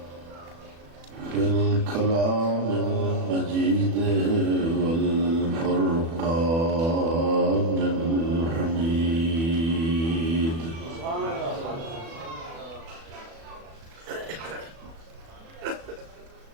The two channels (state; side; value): late; left; 36 ms